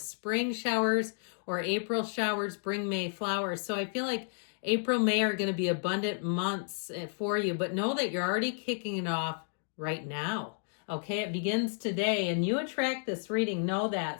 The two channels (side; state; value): right; silent; digital silence